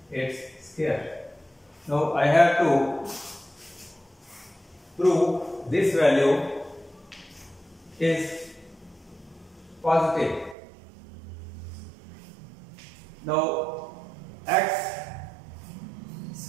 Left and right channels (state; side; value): drops out; left; at 10.6 s